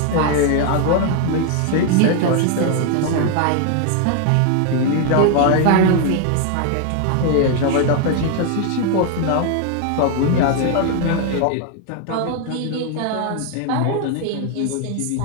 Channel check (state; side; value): different; both; correlation 0.00